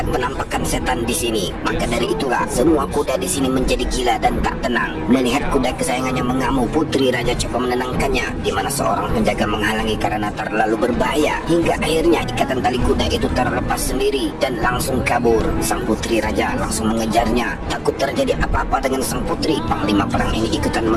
penampakan setan di sini. Maka dari itulah semua kuda di sini menjadi gila dan tak tenang. Melihat kuda kesayangannya mengamuk, Putri Raja coba menenangkannya, di mana seorang penjaga menghalangi karena terlalu berbahaya. Hingga akhirnya ikatan tali kuda itu terlepas sendiri dan langsung kabur. Sang Putri Raja langsung mengejarnya. Takut terjadi apa-apa dengan sang putri, Panglima Perang ini ikutan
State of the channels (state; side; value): identical; both; correlation 1.00